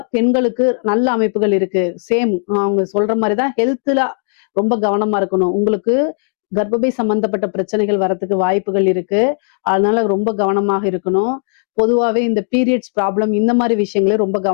பெண்களுக்கு நல்ல அமைப்புகள் இருக்கு. சேம் அவங்க சொல்ற மாதிரிதான் ஹெல்த்ல ரொம்ப கவனமா இருக்கணும். உங்களுக்கு கர்ப்பப்பை சம்பந்தப்பட்ட பிரச்சனைகள் வரத்துக்கு வாய்ப்புகள் இருக்கு. அதனால ரொம்ப கவனமாக இருக்கணும். பொதுவாவே இந்த பீரியட்ஸ் ப்ராப்ளம் இந்த மாதிரி விஷயங்களே ரொம்ப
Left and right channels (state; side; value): silent; right; digital silence